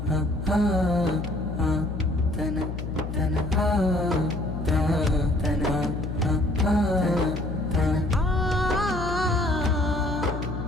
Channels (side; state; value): left; noise; hum, 6 dB below the sound